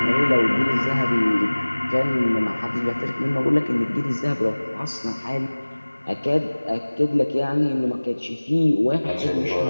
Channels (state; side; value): inverted; both; correlation -1.00